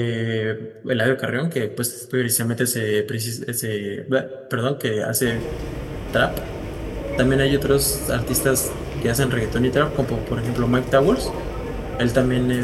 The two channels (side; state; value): both; identical; correlation 1.00